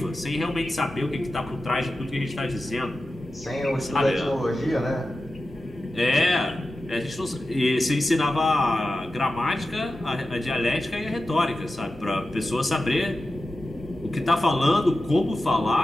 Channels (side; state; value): both; normal; correlation 0.93